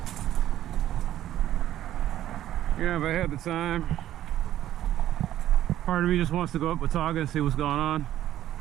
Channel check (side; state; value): left; quieter; 12.5 dB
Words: Yeah, if I had the time. Part of me just wants to go up Watauga and see what's going on.